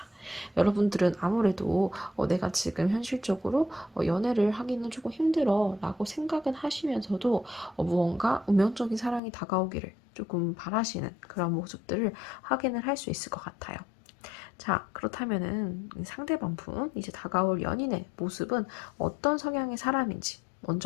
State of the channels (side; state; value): right; drops out; at 9.2 s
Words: 여러분들은 아무래도 내가 지금 현실적으로 연애를 하기는 조금 힘들어 라고 생각은 하시면서도 무언가 운명적인 사랑이 다가오기를 조금 바라시는 그런 모습들을 확인을 할 수 있을 것 같아요. 자, 그렇다면은 상대방 분, 이제 다가올 연인의 모습은 어떤 성향의 사람인지